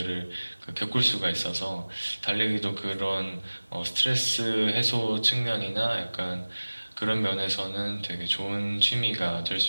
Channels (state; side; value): inverted; both; correlation -1.00